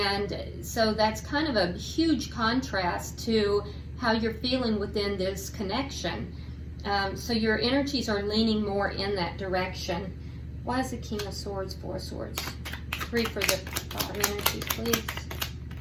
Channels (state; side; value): identical; both; correlation 1.00